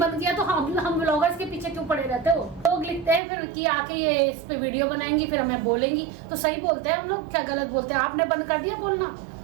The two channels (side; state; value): left; drops out; at 3.2 s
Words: बंद किया, तो हम व्लॉगर्स के पीछे क्यों पड़े रहते हो? लोग लिखते हैं फिर कि आके ये इस पे वीडियो बनाएंगी फिर हमें बोलेंगी, तो सही बोलते हैं हम लोग, क्या गलत बोलते हैं? आपने बंद कर दिया बोलना,